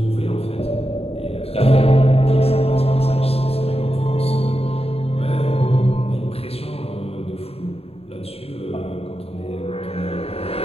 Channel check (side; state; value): right; late; 0.29 ms